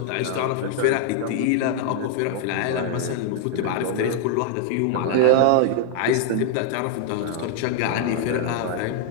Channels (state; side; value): different; both; correlation 0.00